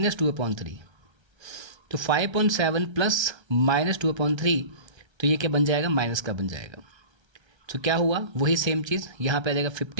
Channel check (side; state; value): left; late; 1.3 ms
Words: तो 5/7 प्लस -2/3 तो ये क्या बन जाएगा? माइनस का बन जाएगा. तो क्या हुआ? वही सेम चीज़ यहाँ पे आ जाएगा